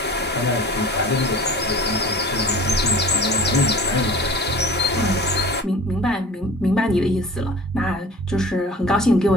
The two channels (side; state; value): both; normal; correlation 0.41